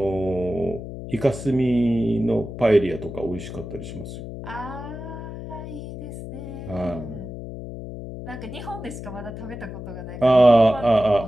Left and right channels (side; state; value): left; noise; hum, 10 dB below the sound